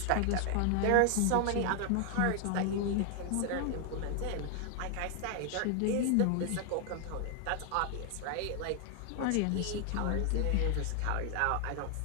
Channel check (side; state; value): both; different; correlation 0.00